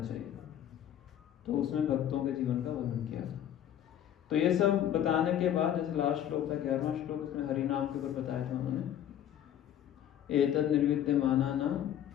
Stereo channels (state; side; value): quieter; right; 10.6 dB